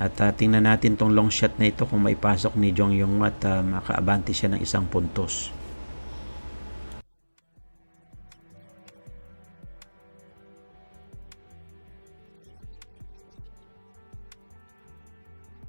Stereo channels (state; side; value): inverted; both; correlation -1.00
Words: At tingnan natin tong long shot na ito kung maipasok ni Jiang Yanghua at makaabante siya ng 1 puntos. 自然可以走到3号球的脚带，看一看主球的这个速度。